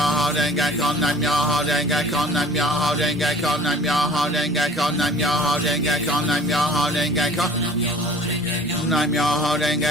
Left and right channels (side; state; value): both; normal; correlation 0.48